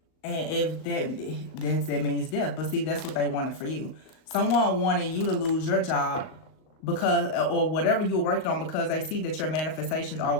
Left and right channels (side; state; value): right; late; 38 ms